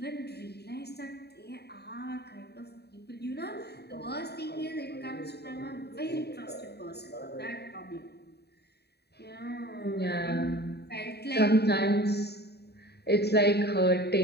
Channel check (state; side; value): late; right; 0.48 ms